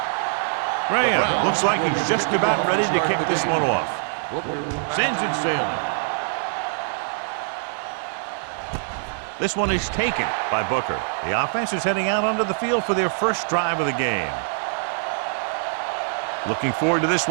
Graham looks like he's just about ready to kick this one off. Sends it sailing. This one is taken by Booker. The offense is heading out onto the field for their first drive of the game. Looking forward to this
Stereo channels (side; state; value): left; silent; digital silence